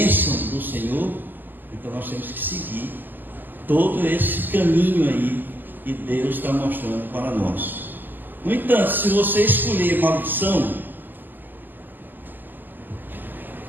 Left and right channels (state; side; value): late; left; 0.088 ms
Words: do Senhor, então nós temos que seguir todo esse caminho aí que Deus está mostrando para nós. No entanto, se você escolher maldição,